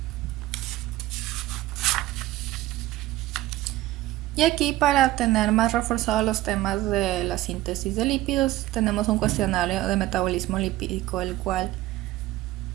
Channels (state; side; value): quieter; left; 16.3 dB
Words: Y aquí, para tener más reforzados los temas de la síntesis de lípidos, tenemos un cuestionario de metabolismo lipídico, el cual